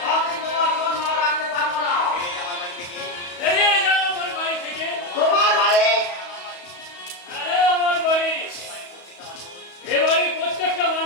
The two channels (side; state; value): right; late; 34 ms